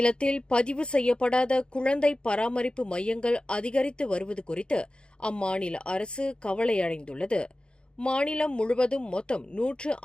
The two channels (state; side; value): late; right; 0.053 ms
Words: பதிவு செய்யப்படாத குழந்தை பராமரிப்பு மையங்கள் அதிகரித்து வருவது குறித்து அம்மாநில அரசு கவலையடைந்துள்ளது. மாநிலம் முழுவதும் மொத்தம்